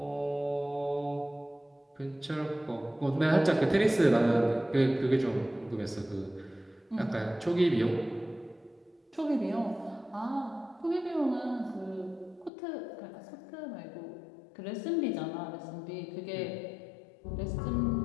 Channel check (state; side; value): drops out; right; at 12.5 s